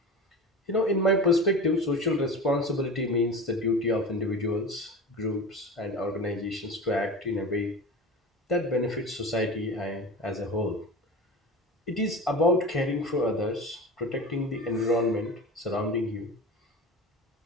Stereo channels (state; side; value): normal; both; correlation 0.31